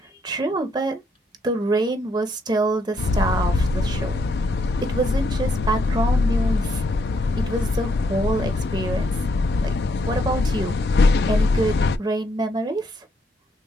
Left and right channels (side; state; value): both; normal; correlation 0.74